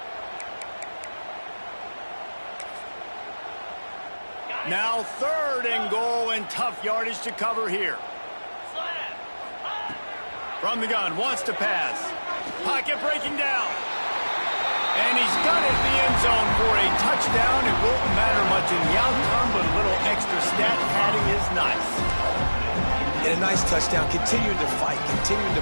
Now 3rd and goal, and tough yardage to cover here. From the gun, wants to pass. Pocket breaking down. And he's got it in the end zone for a touchdown. It won't matter much in the outcome, but a little extra stat padding is nice. And a nice touchdown, continuing to fight, continuing to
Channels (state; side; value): inverted; both; correlation -1.00